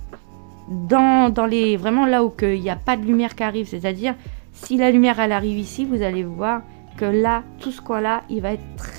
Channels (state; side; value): silent; left; digital silence